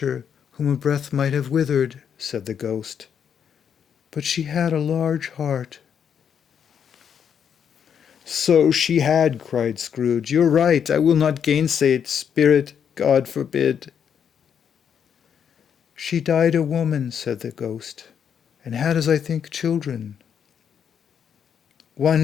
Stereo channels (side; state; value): right; quieter; 7.9 dB